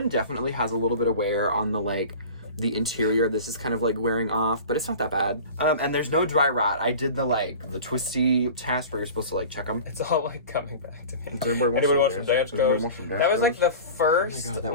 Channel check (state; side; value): inverted; both; correlation -0.38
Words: definitely has a little bit of wear on the like the interior. This is kind of like wearing off, but it's not that bad. And there's no dry rot. I did the twisty test where you're supposed to like check them. It's all like coming back to me. Anybody want some Danskos? That was like the